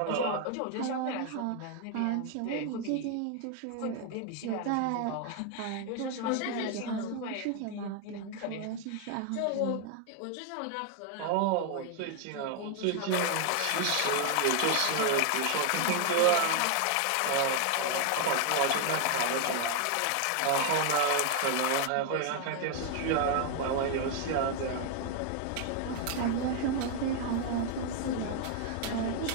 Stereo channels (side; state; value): both; different; correlation 0.00